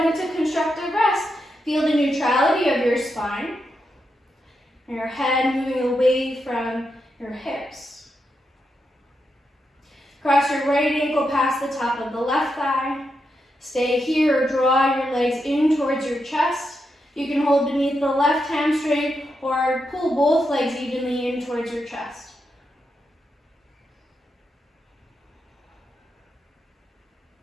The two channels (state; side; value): normal; both; correlation 0.84